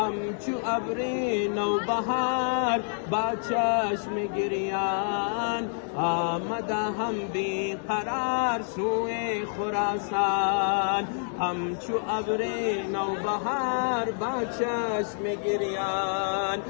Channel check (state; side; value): silent; right; digital silence